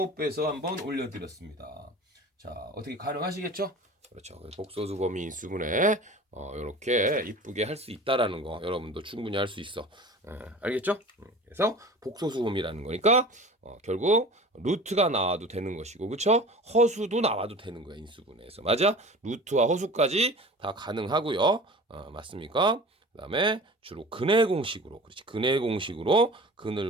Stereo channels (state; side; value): normal; both; correlation 0.39